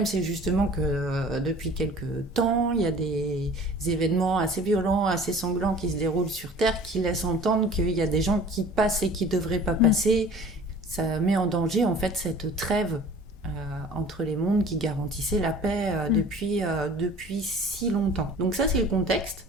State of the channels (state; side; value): normal; both; correlation 0.46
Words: c'est justement que depuis quelques temps, il y a des événements assez violents, assez sanglants qui se déroulent sur Terre, qui laissent entendre qu'il y a des gens qui passent et qui devraient pas passer. Ça met en danger, en fait, cette trêve entre les mondes qui garantissait la paix depuis si longtemps. Donc ça, c'est le contexte